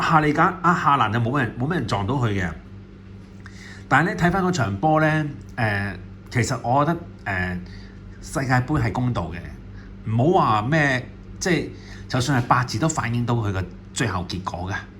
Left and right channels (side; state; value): both; identical; correlation 1.00